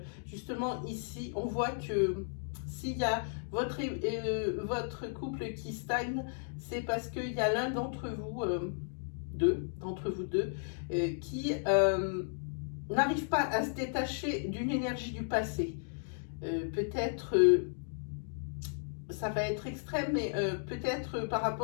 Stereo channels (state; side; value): silent; right; digital silence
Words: Justement ici on voit que s'il y a votre couple qui stagne, c'est parce qu'il y a l'un d'entre vous, deux, qui n'arrive pas à se détacher d'une énergie du passé. Peut-être, ça va être extrême, mais peut-être par